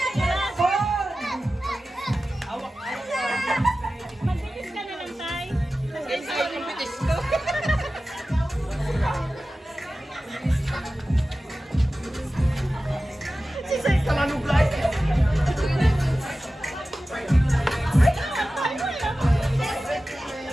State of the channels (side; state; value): both; normal; correlation 0.95